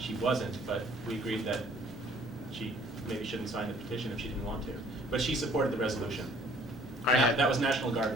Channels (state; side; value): normal; both; correlation 0.57